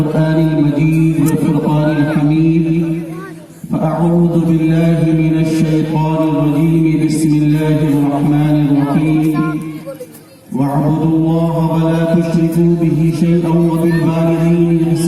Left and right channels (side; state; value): both; identical; correlation 1.00